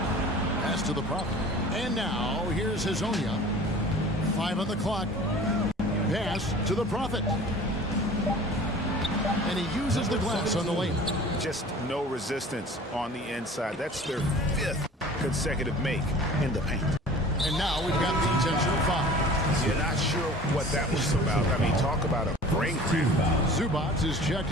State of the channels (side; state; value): both; normal; correlation 0.44